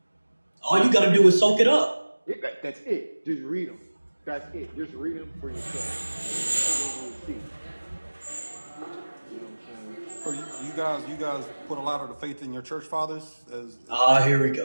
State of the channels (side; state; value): both; inverted; correlation -1.00